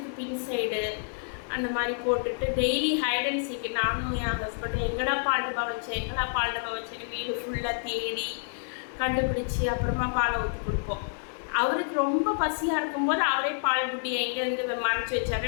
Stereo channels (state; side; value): silent; right; digital silence